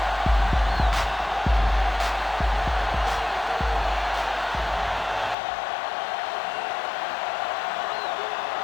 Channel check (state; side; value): drops out; right; at 5.4 s